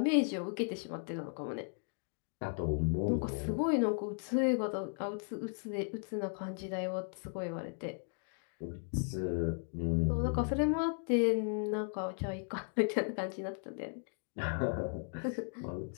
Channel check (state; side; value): silent; right; 54 dB below the other